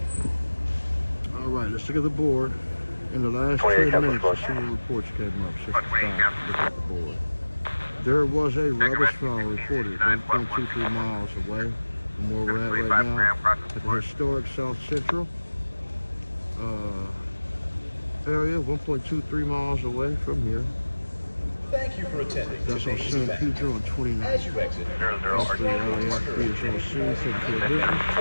All right, let's look at the board. In the last 10 minutes, the civil reports came up. 65. Look at the board. There was a rubbish fall reported 1.23 miles away from where we're at right now, at the historic South Central area, 1.23 miles away from here. Thank you for attending That's on today's San event. Pedro on 29. As you exit, 00 That's the LAFC is on scene, taking care of business.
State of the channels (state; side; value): inverted; both; correlation -1.00